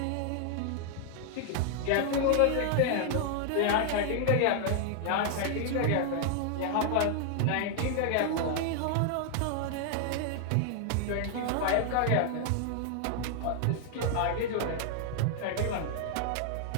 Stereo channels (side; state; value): both; different; correlation 0.00